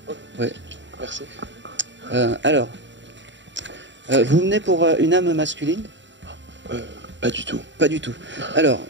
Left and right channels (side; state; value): left; late; 0.53 ms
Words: Oui. Merci. Alors, vous venez pour une âme masculine? Pas du tout. Pas du tout. Alors,